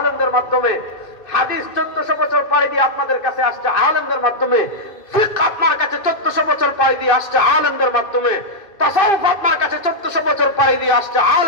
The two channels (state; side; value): late; right; 2.5 ms